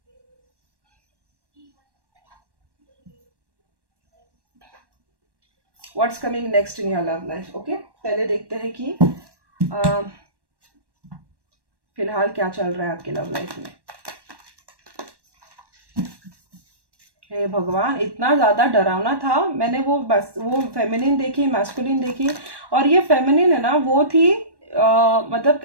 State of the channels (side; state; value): left; late; 1.1 ms